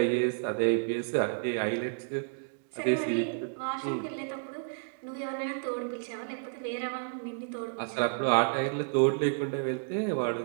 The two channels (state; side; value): silent; left; digital silence